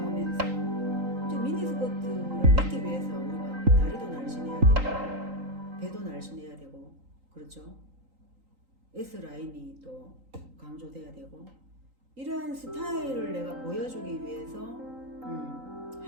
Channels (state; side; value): late; left; 3.8 ms